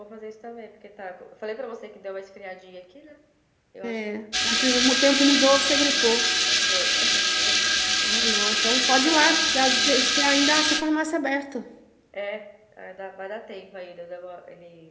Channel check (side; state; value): both; identical; correlation 1.00